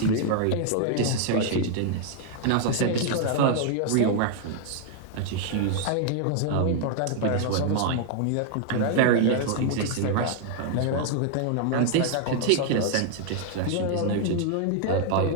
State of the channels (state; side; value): different; both; correlation 0.00